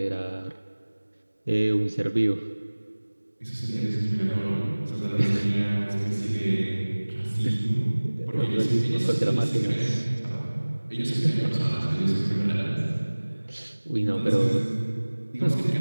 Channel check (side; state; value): both; inverted; correlation -1.00